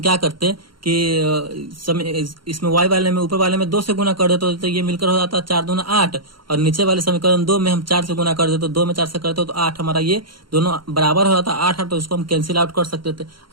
क्या करते कि इसमें y वाले में, ऊपर वाले में 2 से गुना कर देते तो ये मिलकर हो जाता 4 दूना 8, और नीचे वाले समीकरण 2 में हम 4 से गुना कर देते, तो 2 में 4 से करते तो 8, हमारा ये दोनों बराबर हो जाता 8, तो इसको हम कैंसिल आउट कर सकते थे।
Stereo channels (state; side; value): late; left; 0.73 ms